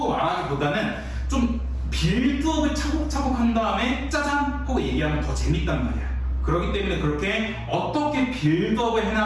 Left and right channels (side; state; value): both; identical; correlation 1.00